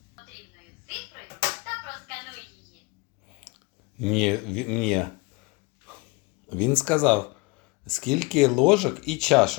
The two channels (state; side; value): quieter; right; 26.5 dB